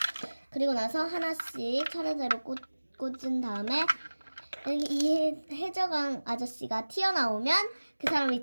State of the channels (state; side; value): inverted; both; correlation -1.00